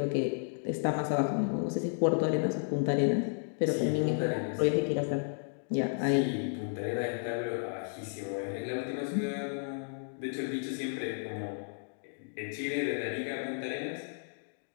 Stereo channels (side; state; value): right; silent; digital silence